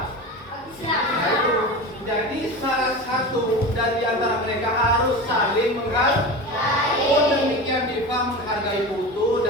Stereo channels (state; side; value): normal; both; correlation 0.28